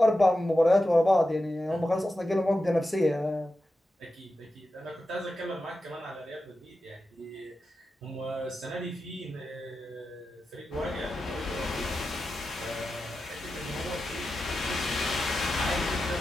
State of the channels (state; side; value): normal; both; correlation 0.91